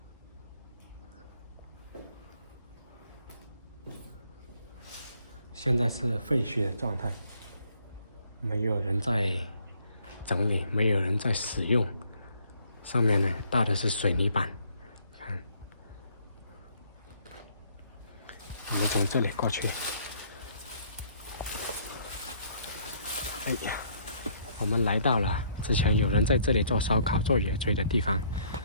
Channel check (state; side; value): inverted; both; correlation -0.64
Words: 现在是废墟的状态，没有人在整理，没有人在使用。上面呢搭的是水泥板，看。我们从这里过去。哎呀！我们来到了之前有人在这里做烧烤、做野炊的地方。